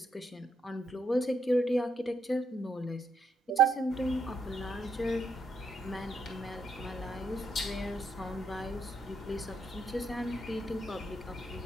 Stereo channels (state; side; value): normal; both; correlation 0.77